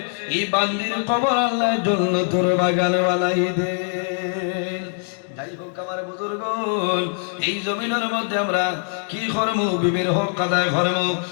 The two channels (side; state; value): right; silent; 58 dB below the other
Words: এই বান্দির কবর আল্লাহ জান্নাতের বাগান বানাই দে। যাই হোক আমার বুজুর্গ এই জমিনের মধ্যে আমরা কি করবো বিবির হক আদায় করবো